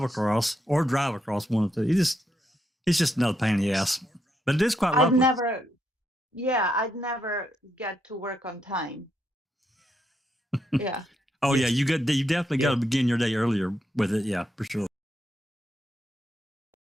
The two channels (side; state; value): both; normal; correlation 0.80